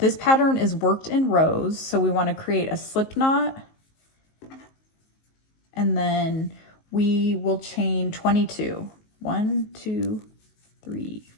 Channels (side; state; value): right; late; 19 ms